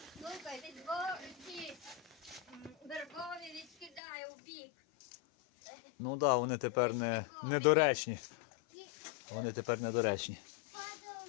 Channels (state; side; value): drops out; right; at 4.0 s